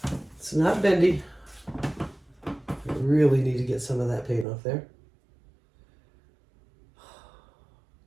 It's not bendy. I really need to get some of that paint off there.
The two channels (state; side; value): drops out; left; at 4.5 s